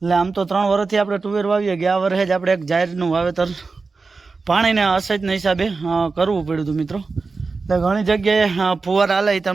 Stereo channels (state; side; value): quieter; left; 4.2 dB